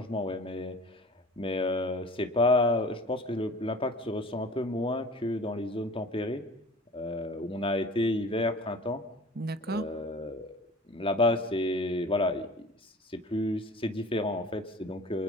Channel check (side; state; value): both; normal; correlation 0.43